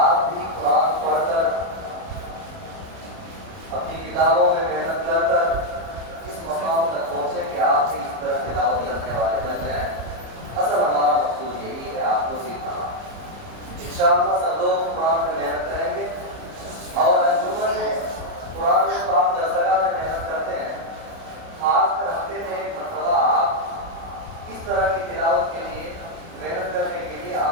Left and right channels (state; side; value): late; left; 30 ms